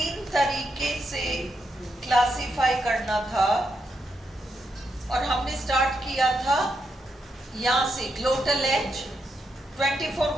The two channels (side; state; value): both; normal; correlation 0.82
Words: तरीके से क्लासिफाई करना था और हमने स्टार्ट किया था यहाँ से ग्लोटल एज 24